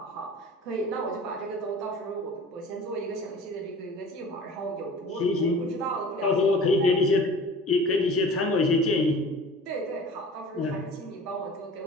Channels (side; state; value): both; normal; correlation 0.41